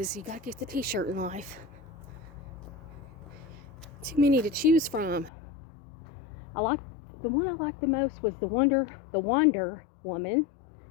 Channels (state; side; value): drops out; right; at 5.3 s